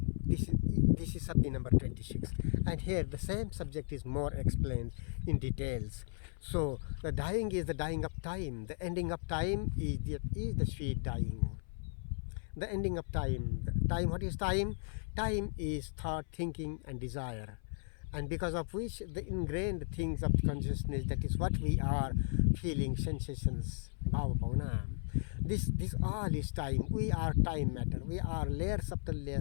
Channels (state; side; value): silent; right; 54 dB below the other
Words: This is Sabdi number 26, and here the same subject is more explained in details. So the dying is the dying of time, the ending of time is the sweet dying. The ending of time. Time, what is time? Time is thought, thinking and desire, and because of which the ingrained things of consciousness, that is what we are, feeling, sensations, bhava bhavana. This all is time. We are time matter. We are layers after